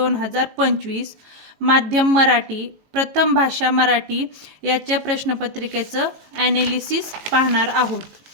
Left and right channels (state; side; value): late; left; 18 ms